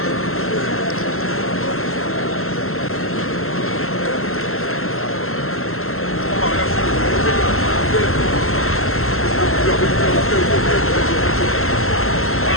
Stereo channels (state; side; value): late; right; 0.62 ms